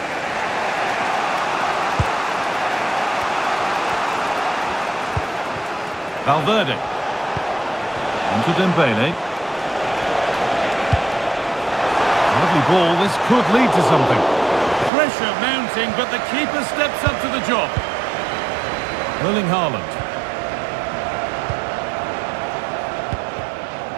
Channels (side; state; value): left; drops out; at 14.9 s